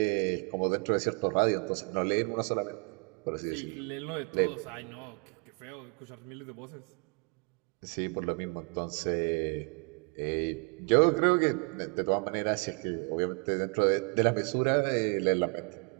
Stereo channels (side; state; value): left; quieter; 36.5 dB